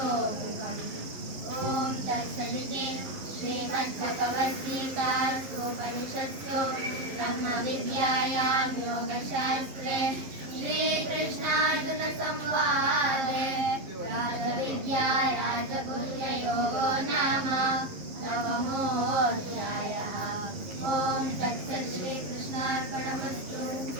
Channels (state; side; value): late; left; 11 ms